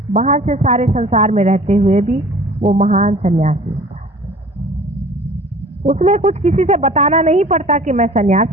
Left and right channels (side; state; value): both; normal; correlation 0.47